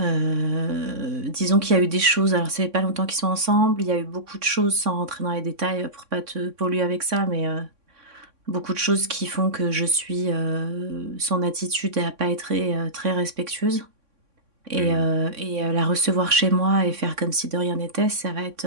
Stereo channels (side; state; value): left; late; 3.6 ms